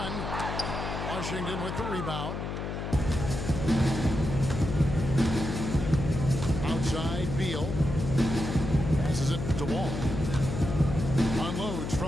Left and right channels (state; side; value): noise; left; hum, 5 dB below the sound